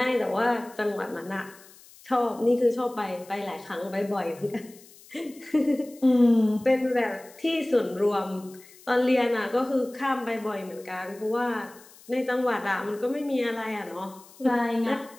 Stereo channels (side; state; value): left; noise; hiss, 23 dB below the sound